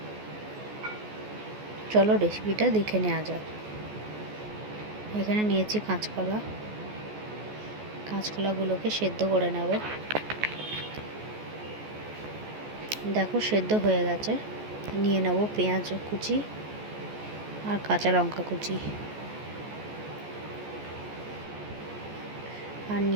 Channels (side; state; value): left; late; 14 ms